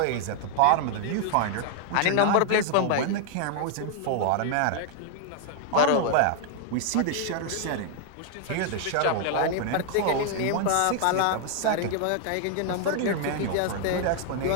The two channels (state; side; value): different; both; correlation 0.00